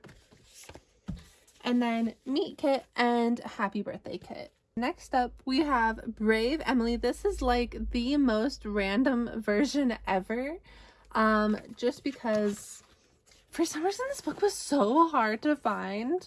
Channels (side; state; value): both; identical; correlation 1.00